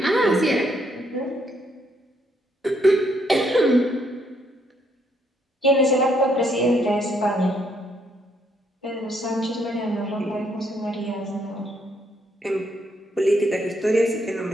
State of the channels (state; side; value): normal; both; correlation 0.72